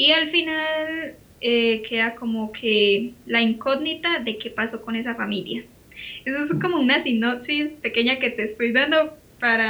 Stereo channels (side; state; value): both; identical; correlation 1.00